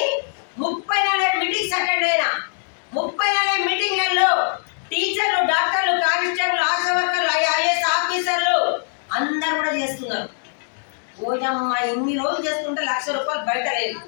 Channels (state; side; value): silent; right; digital silence